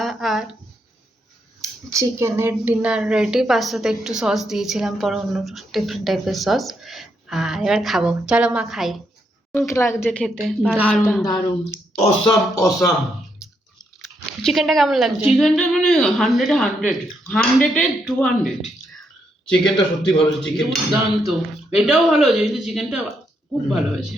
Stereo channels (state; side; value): normal; both; correlation 0.78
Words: আর চিকেনের ডিনার রেডি। পাস্তাতে একটু সস দিয়েছিলাম, পরে অন্য ডিফারেন্ট টাইপের সস। আর এবার খাবো, চলো মা খাই। কেমন লাগছে খেতে? দারুণ দারুণ, অসাম অসাম। চিকেনটা কেমন লাগছে? চিকেনটা মানে 100-এ 200। চিকেনটা সত্যি ভালো, চিকেন দুর্দান্ত। এটাও ভালো হয়েছে, কিন্তু চিকেনটা খুব ভালো হয়েছে।